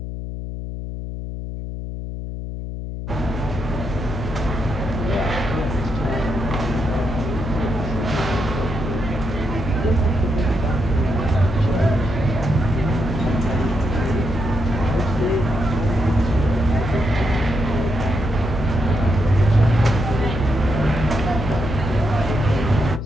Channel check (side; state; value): left; noise; hum, 6 dB below the sound